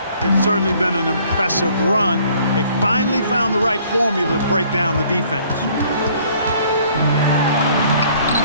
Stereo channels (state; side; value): inverted; both; correlation -0.59